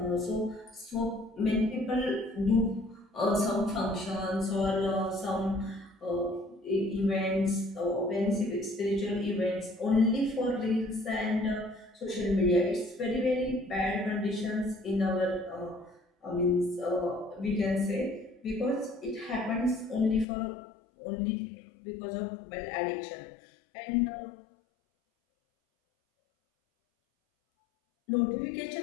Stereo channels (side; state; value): right; drops out; at 20.2 s